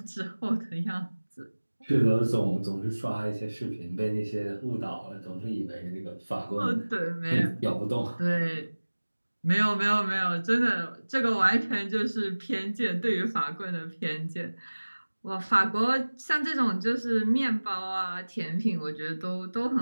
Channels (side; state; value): both; inverted; correlation -1.00